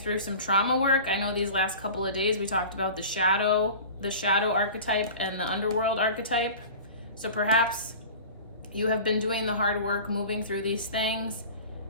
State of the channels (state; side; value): inverted; both; correlation -0.38